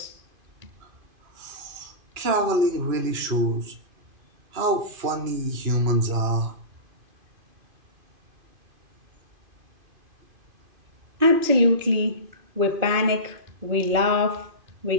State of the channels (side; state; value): left; late; 2.5 ms